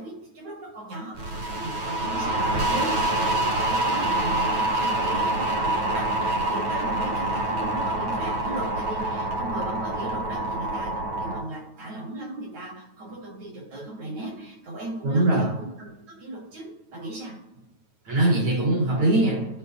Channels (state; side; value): late; left; 9.2 ms